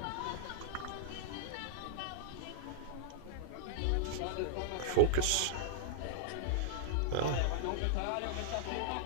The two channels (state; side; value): different; both; correlation -0.01